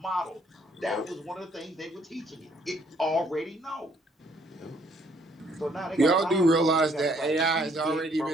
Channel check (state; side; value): normal; both; correlation 0.66